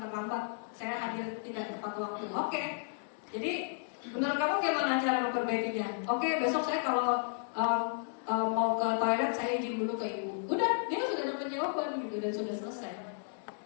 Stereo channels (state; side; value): silent; right; digital silence